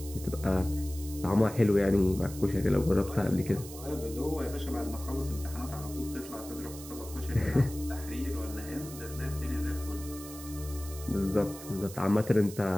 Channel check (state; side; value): noise; right; hiss, 14 dB below the sound